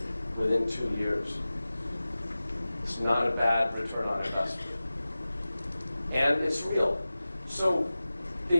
within 2 years. It's not a bad return on investment. And it's real. So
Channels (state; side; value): inverted; both; correlation -0.96